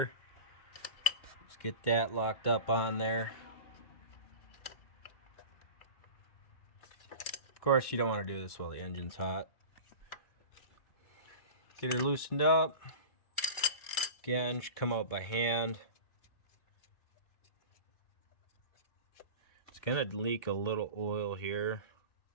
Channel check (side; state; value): right; late; 2.3 ms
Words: Let's get that locked up on there. Of course, you don't want to do this while the engine's hot. Get her loosened up. Again, should come out by hand. It's gonna leak a little oil here,